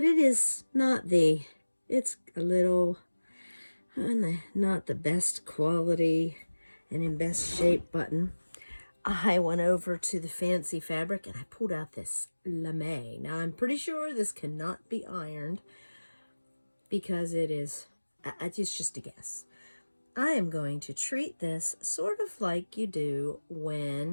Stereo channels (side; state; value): both; inverted; correlation -1.00